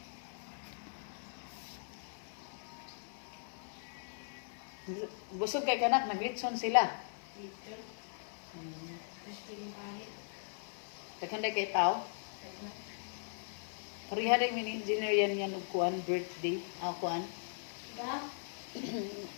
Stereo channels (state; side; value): silent; right; 52 dB below the other